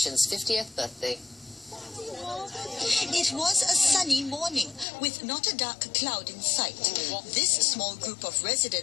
50th birthday. It was a sunny morning with not a dark cloud in sight. This small group of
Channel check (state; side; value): drops out; right; at 4.9 s